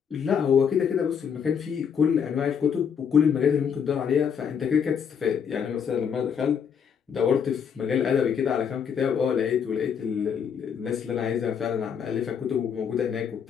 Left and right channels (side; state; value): right; quieter; 7.3 dB